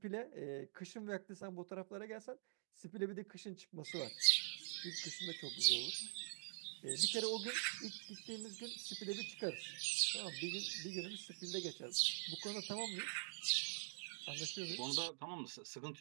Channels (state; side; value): silent; left; digital silence